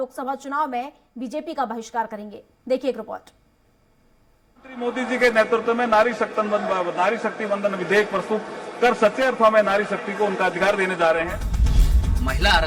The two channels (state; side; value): identical; both; correlation 1.00